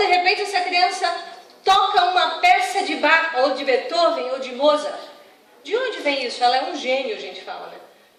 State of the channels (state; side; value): identical; both; correlation 1.00